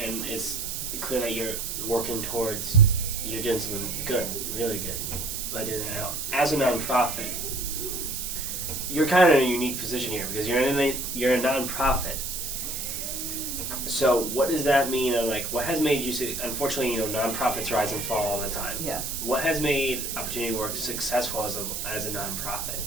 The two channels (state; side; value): noise; right; hiss, 4 dB below the sound